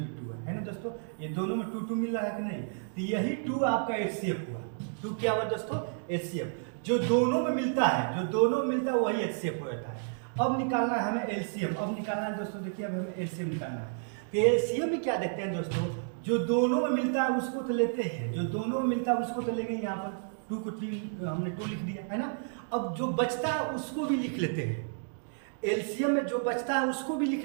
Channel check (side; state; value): left; silent; digital silence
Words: 2 है ना दोस्तों, ये दोनों में 2 मिल रहा है कि नहीं, तो यही 2 आपका एचसीएफ हुआ। 2 क्या हुआ दोस्तों, एचसीएफ। जो दोनों में मिलता है वही एचसीएफ होता है। अब निकालना है हमें एलसीएम, अब निकालना है दोस्तों, देखिए अब हमें एलसीएम निकालना है। तो एलसीएम में क्या देखते हैं दोस्तों, जो दोनों में मिलता है उसको तो लेते हैं, जो दोनों में मिलता है उसको तो लेंगे। यहाँ पर 2 को 3 हमने 2 लिख दिया है ना। अब जो बचता है उसको भी लिख लेते हैं, एलसीएम में जो बचता है उसको भी